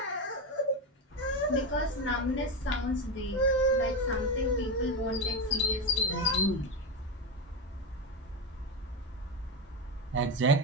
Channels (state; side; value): normal; both; correlation 0.13